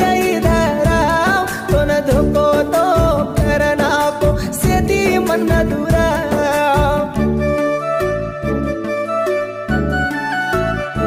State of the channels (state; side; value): identical; both; correlation 1.00